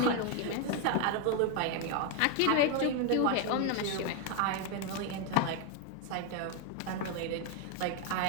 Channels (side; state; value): both; different; correlation 0.01